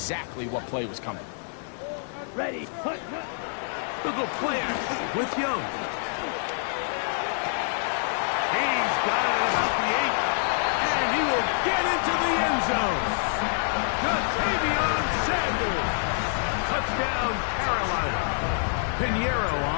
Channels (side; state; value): right; silent; 60 dB below the other